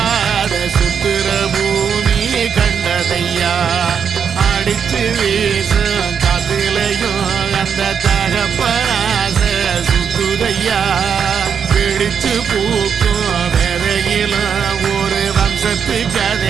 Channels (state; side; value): quieter; left; 7.1 dB